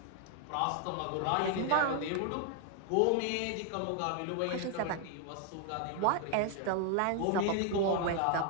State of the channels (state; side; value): different; both; correlation 0.00